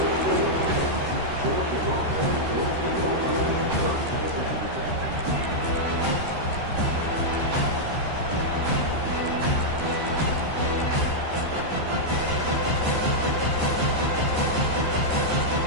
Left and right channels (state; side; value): late; left; 13 ms